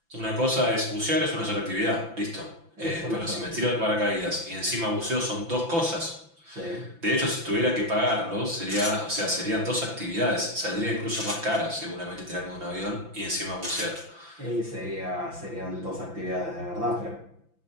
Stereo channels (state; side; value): late; left; 5.9 ms